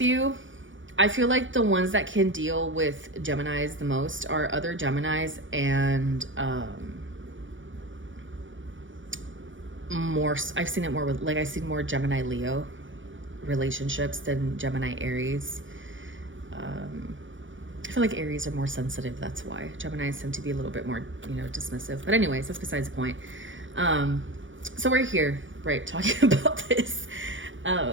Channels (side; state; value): left; late; 0.56 ms